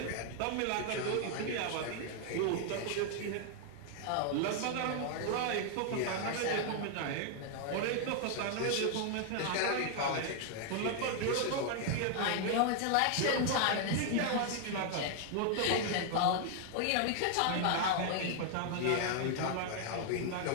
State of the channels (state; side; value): different; both; correlation 0.00